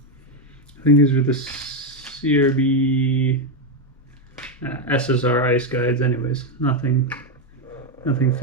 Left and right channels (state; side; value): normal; both; correlation 0.06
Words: think these are the CRB SSR ice guides anyways. Nothing